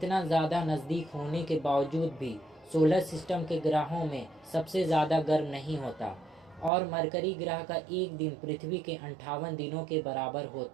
ज़्यादा नज़दीक होने के बावजूद भी सोलर सिस्टम के ग्रहों में सबसे ज़्यादा गर्म नहीं होता और मरकरी ग्रह का एक दिन पृथ्वी के 58 दिनों के बराबर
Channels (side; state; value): left; drops out; at 6.7 s